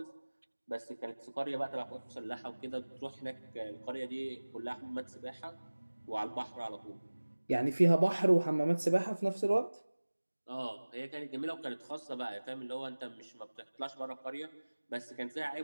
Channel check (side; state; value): both; inverted; correlation -1.00